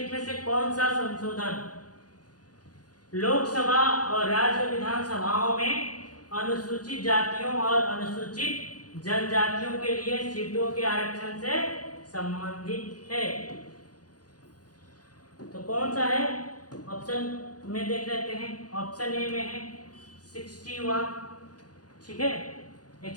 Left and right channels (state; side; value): late; right; 0.69 ms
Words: में से कौन सा संशोधन लोकसभा और राज्य विधानसभाओं में अनुसूचित जातियों और अनुसूचित जनजातियों के लिए सीटों के आरक्षण से संबंधित है? तो कौन सा है? ऑप्शन में देख लेते हैं। ऑप्शन ए में है 61, ठीक है,